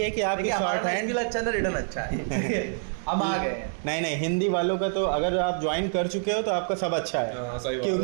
कि आपके देखिए शॉर्ट हमारा हैंड स्किल अच्छा है ना, रिटर्न अच्छा है। हम आ गए हैं। नहीं नहीं, हिंदी वालों का तो अगर आप ज्वाइन कर चुके हो तो आपका सब अच्छा है। हाँ, सही बात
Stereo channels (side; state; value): left; silent; 58 dB below the other